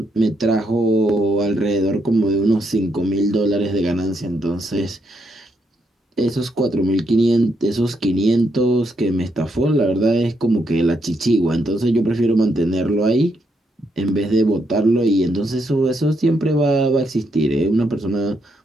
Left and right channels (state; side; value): normal; both; correlation 0.78